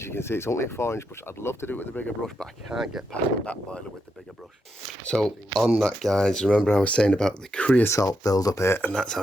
you can see, it's only a 4-inch brush. I'd love to do it with a bigger brush, but I can't get past the back boiler with the bigger brush. So on that, guys, remember I was saying about the creosote build up here, and that's how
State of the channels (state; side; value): normal; both; correlation 0.83